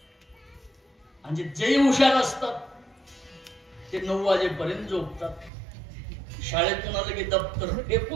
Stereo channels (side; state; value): left; drops out; at 5.5 s